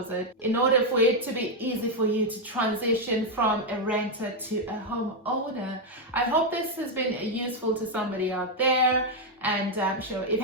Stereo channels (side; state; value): both; normal; correlation 0.02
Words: in order for it to be easy for you to transition from a renter to a homeowner. I hope this has been useful to somebody out there, and I'm sure if you